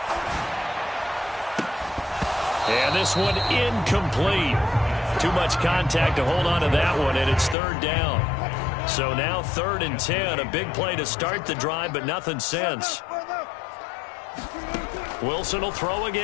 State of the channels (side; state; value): right; drops out; at 7.6 s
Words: And this one incomplete. Too much contact to hold on to that one, and it's 3rd down. So now 3rd and 10, a big play to start the drive, but nothing since. Wilson will throw